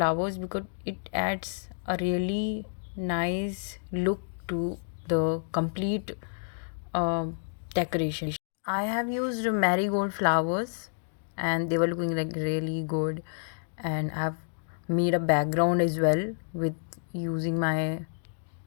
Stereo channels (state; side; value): silent; right; digital silence